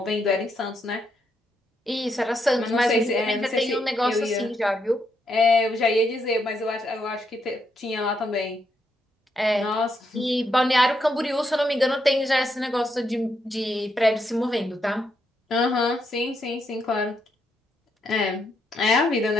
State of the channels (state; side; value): normal; both; correlation 0.79